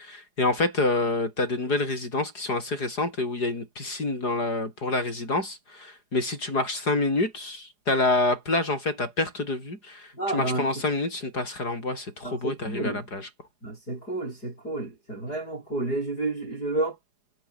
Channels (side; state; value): right; late; 4.8 ms